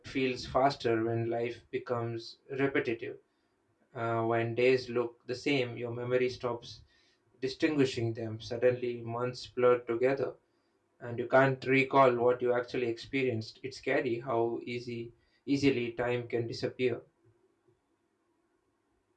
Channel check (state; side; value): identical; both; correlation 1.00